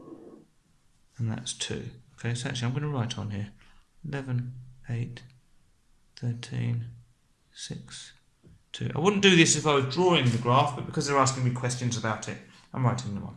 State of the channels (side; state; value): both; identical; correlation 1.00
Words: And that's 2. Okay, so actually I'm going to write on here 11, 8, 13, 6, 2. I wouldn't do this if I was drawing the graph, but because they're asking me questions about it, I'm writing them on.